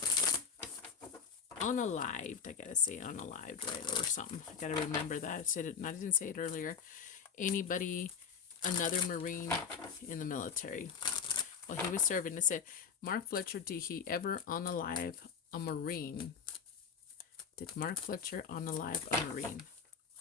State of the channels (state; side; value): quieter; right; 6.5 dB